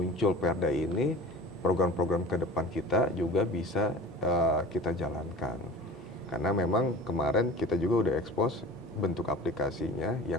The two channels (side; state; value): both; normal; correlation 0.39